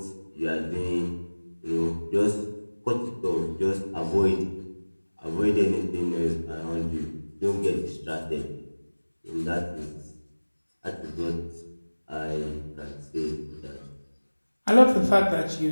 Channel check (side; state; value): both; inverted; correlation -1.00